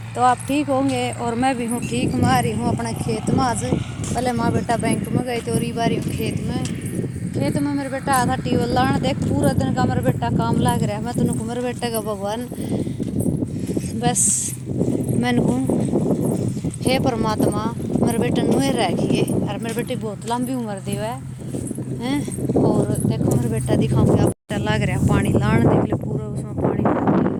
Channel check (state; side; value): identical; both; correlation 1.00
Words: तो आप ठीक होंगे और मैं भी हूँ ठीक। मैं आ रही हूँ अपना खेत में। आज पहले माँ बेटा बैंक में गए थे और बारी हूँ खेत में मेरे बेटा आया था टीवल लाने। देख पूरा दिन का मेरा बेटा काम लाग रहा है। मैं तो मेरे बेटे का भगवान बस मैंने कहूँ हे परमात्मा मेरे बेटे नुए रखिए और मेरे बेटे बहुत लंबी उम्र दी है हैं। और देखो मेरे बेटा दिखाऊंगा बेटा लग रहा है पानी लाने। देख लो पूरा उसमें पानी लग रहा